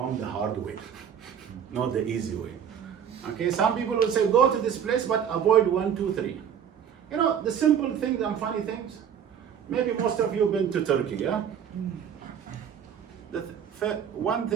the hard way, not the easy way. Okay, some people will say, go to this place, but avoid 1, 2, 3. You know, the simple things and funny things. Maybe most of you have been to Turkey, yeah? One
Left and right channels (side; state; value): left; quieter; 8.3 dB